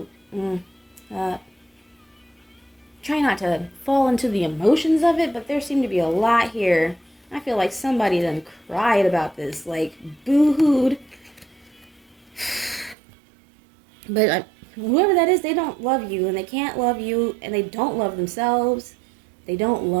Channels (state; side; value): drops out; left; at 13.0 s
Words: try not to fall into the emotions of it, but there seem to be a lot here. I feel like somebody done cried about this, like boo-hooed. But whoever that is, they don't love you, and they can't love you, and they don't love themselves. They don't